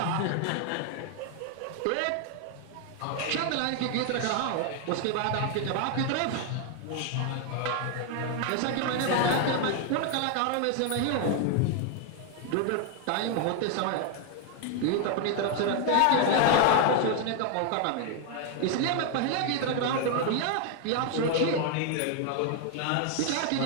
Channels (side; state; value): both; different; correlation 0.00